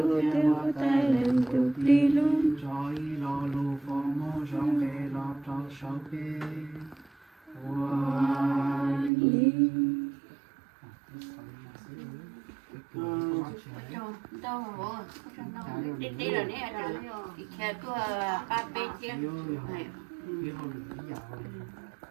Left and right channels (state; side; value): drops out; left; at 9.1 s